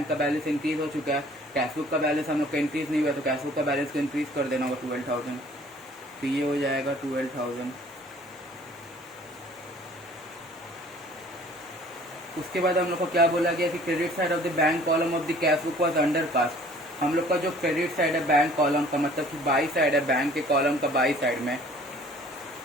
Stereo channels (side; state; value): both; normal; correlation 0.52